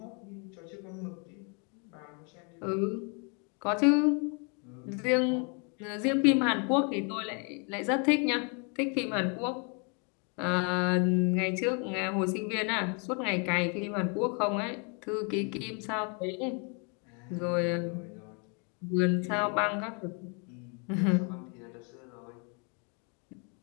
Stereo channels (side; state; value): right; quieter; 36.5 dB